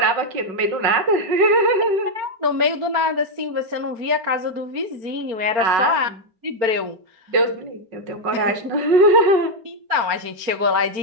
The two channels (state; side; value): late; left; 4.4 ms